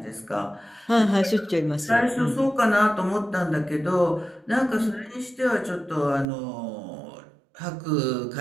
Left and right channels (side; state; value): left; drops out; at 6.2 s